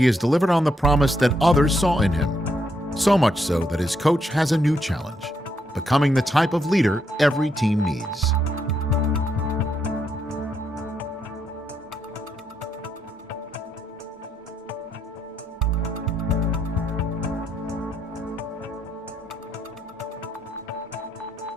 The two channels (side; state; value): both; normal; correlation 0.77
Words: has delivered on the promise that others saw in him. So much so that his coach has a new challenge, becoming the type of leader every team needs.